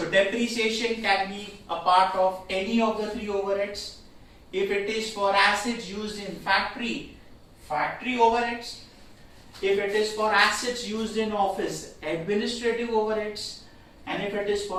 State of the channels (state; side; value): identical; both; correlation 1.00